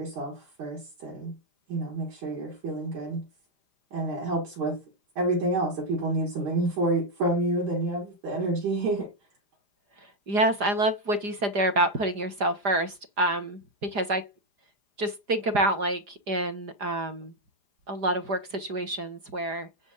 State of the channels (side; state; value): left; late; 4.9 ms